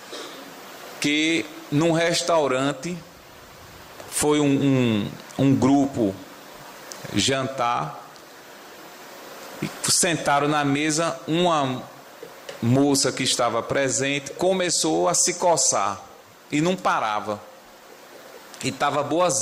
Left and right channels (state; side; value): identical; both; correlation 1.00